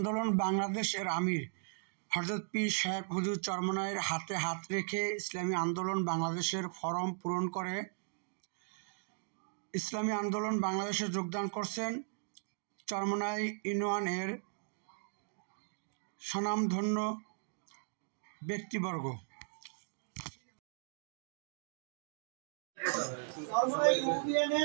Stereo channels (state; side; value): silent; left; digital silence